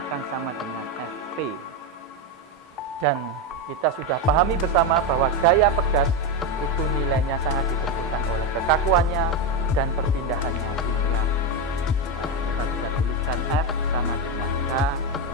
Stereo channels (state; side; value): normal; both; correlation 0.10